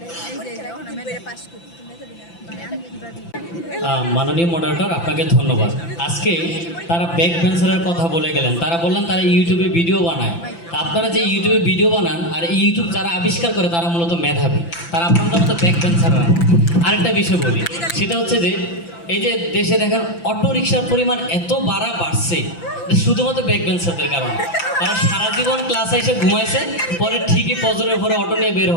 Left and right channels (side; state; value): right; late; 5.9 ms